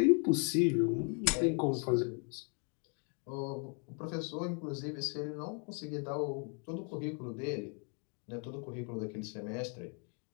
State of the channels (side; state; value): right; quieter; 37.4 dB